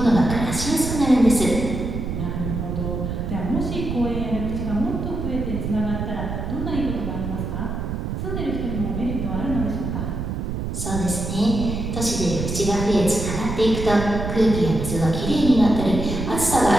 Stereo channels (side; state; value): right; noise; rumble, 4 dB below the sound